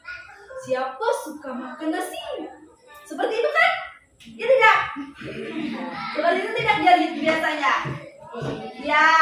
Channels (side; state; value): both; identical; correlation 1.00